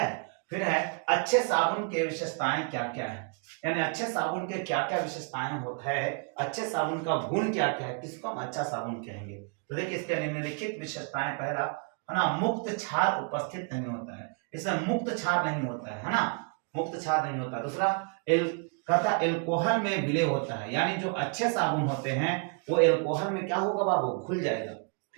फिर है अच्छे साबुन के विशेषताएं क्या क्या है, यानी अच्छे साबुन के क्या क्या विशेषताएं होता है, अच्छे साबुन का गुण क्या क्या है, किसको हम अच्छा साबुन कहेंगे। तो देखिए इसके निम्नलिखित विशेषताएं, पहला है ना, मुक्त क्षार उपस्थित नहीं होता है, इसमें मुक्त क्षार नहीं होता है ना, मुक्त क्षार नहीं होता। दूसरा कहता एल्कोहल में विलय होता है, यानी जो अच्छे साबुन होते हैं वो एल्कोहल में क्या होगा बाबू, घुल जाएगा।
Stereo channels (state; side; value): quieter; left; 38.1 dB